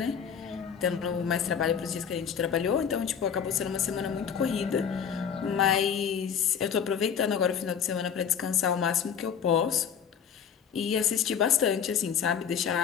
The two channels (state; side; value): quieter; right; 7.7 dB